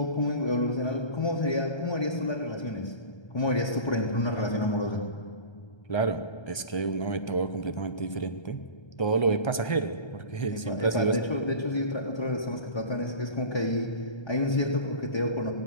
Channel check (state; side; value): late; right; 1.3 ms